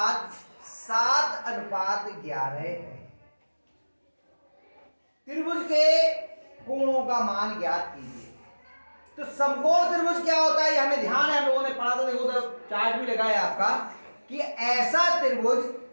7:11 है। त्रिभुज के कोणों का मान ज्ञात कीजिए। तो समकोण त्रिभुज क्या होता है, ये हमें ध्यान है, हम लोगों ने पढ़ा था। देखो उधर चार्ट भी लगा है आपका कि ऐसा त्रिभुज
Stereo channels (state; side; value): inverted; both; correlation -1.00